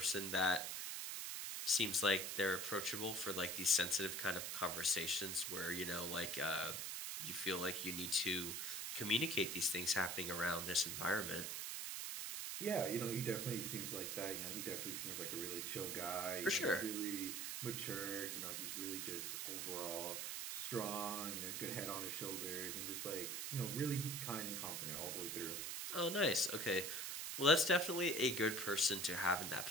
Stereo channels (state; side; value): noise; right; hiss, 3 dB below the sound